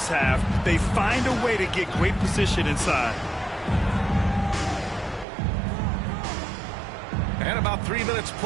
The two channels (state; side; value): drops out; left; at 5.2 s